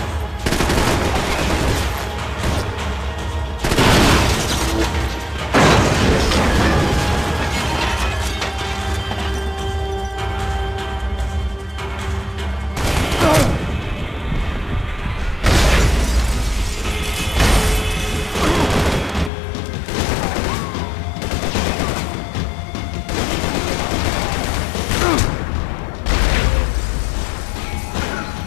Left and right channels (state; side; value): drops out; right; at 19.3 s